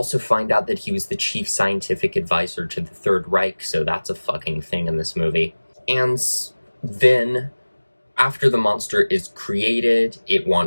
find out that he was the chief scientific advisor to the Third Reich, so that's a fucking thing in this movie. And then, after the monster is created, it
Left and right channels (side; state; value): both; inverted; correlation -1.00